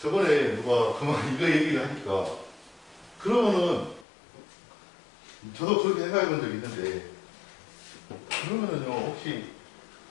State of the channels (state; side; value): drops out; right; at 4.0 s